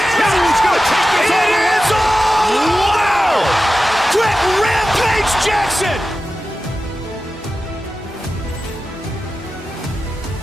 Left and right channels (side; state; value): both; normal; correlation 0.93